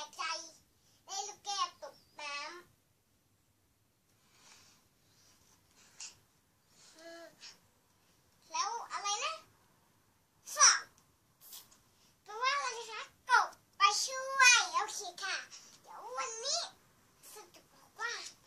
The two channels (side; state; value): both; identical; correlation 1.00